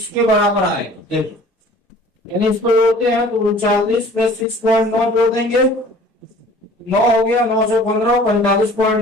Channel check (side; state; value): both; normal; correlation 0.49